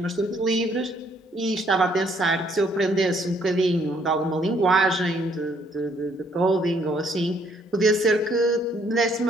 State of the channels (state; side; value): normal; both; correlation 0.67